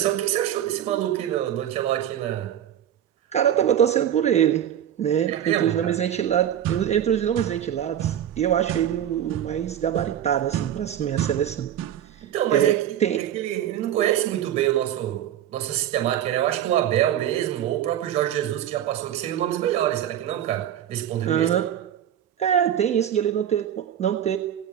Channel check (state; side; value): quieter; left; 10.6 dB